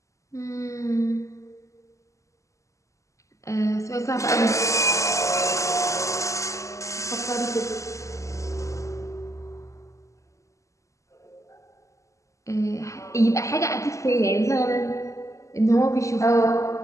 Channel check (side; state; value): right; late; 0.15 ms